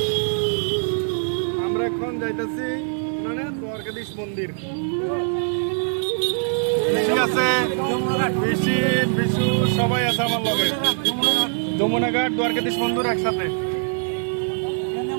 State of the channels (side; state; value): left; silent; 64 dB below the other